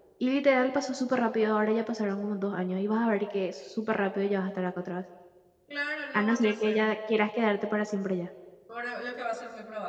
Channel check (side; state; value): both; identical; correlation 1.00